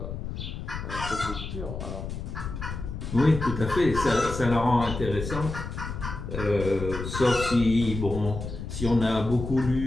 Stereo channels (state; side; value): noise; left; rumble, 6 dB below the sound